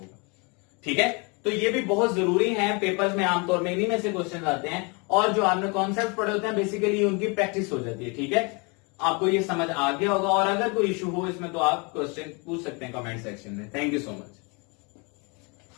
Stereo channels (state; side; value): quieter; right; 31.1 dB